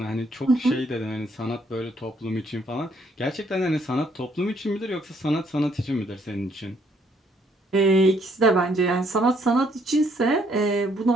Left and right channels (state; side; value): normal; both; correlation 0.68